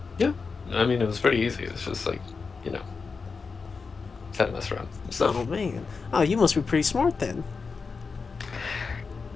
Yeah, I mean it was pretty easy. It's just like, you know, had to mess around and stuff. Oh man. Oh, you must be pretty smart then.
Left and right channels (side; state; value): right; quieter; 4.9 dB